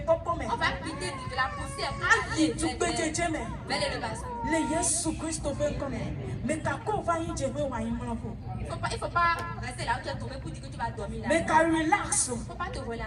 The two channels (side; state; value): both; identical; correlation 1.00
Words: popo me. On va quitter de la poussière pour Ayi aller tubejeje me. vers l'élevation. Le Yesu Christo be come. Me kako va yin jebe wa yin mlopo. Il Il faut pas rester là où tu es tombé pour dire que tu vas dormir là. Mais quand relax. Il ne faut pas te